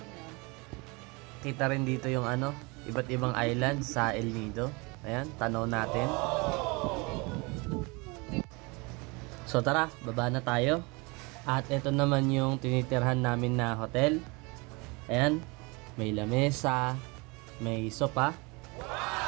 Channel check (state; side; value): quieter; left; 27.5 dB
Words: Kita rin dito yung iba't ibang island sa El Nido. Ayan, tanaw natin. So tara, baba na tayo. At ito naman yung tinitirhan namin na hotel. Ayan, may lamesa, may sopa.